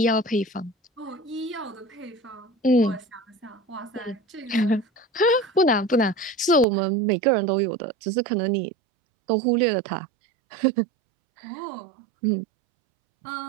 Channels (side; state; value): left; drops out; at 6.7 s